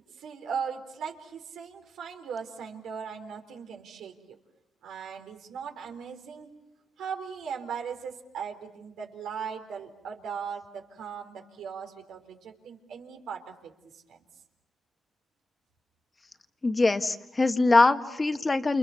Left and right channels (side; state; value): both; normal; correlation 0.92